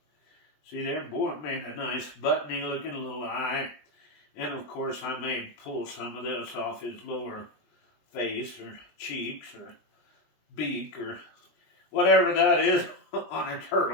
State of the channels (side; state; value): right; late; 20 ms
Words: see there, boy, it made a nice buttony looking little eye. And of course, I may pull some of this off his lower face or cheeks or beak or whatever that is on a